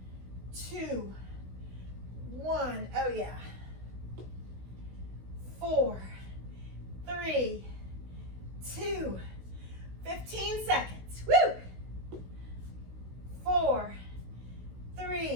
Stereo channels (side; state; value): left; late; 16 ms